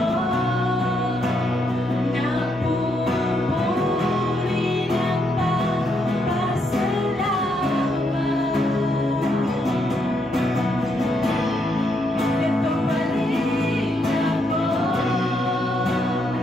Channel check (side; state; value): both; normal; correlation 0.77